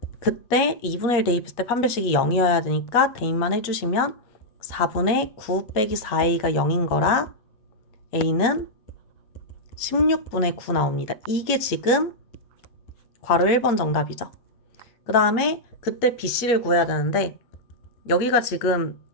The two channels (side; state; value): right; late; 8.4 ms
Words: 그때 2분의 1 대입했을 때 판별식이 0이어야 되니까 대입만 해주시면 4분의 9 빼기 4a가 0인 거라 a는 16분의 9 나옵니다. 이게 지금 괄호 1번 정답이죠. 그 다음에 그때 bc를 구해야 되는데 여기가 지금